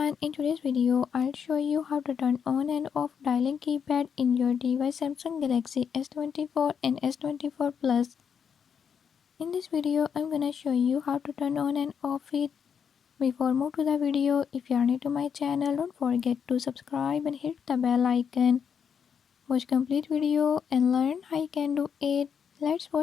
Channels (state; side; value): quieter; right; 7.2 dB